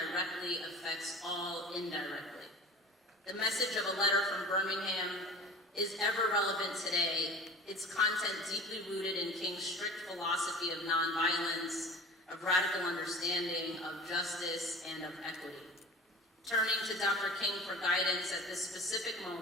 affects all indirectly." The message of a letter from Birmingham is ever relevant today, its content deeply rooted in King's strict philosophy of nonviolence, of radical understanding, of justice, and of equity. Turning to Dr. King for guidance at this specific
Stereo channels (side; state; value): both; normal; correlation 0.39